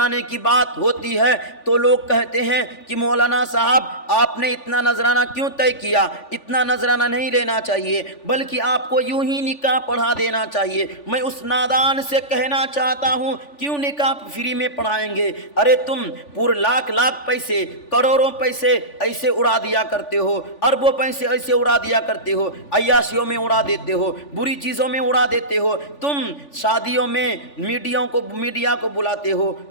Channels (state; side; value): late; right; 3.5 ms